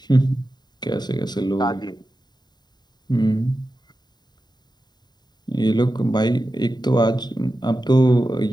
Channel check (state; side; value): late; right; 0.20 ms